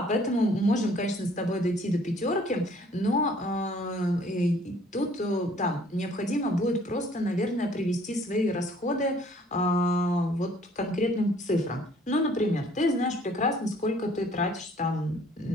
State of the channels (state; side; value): normal; both; correlation 0.58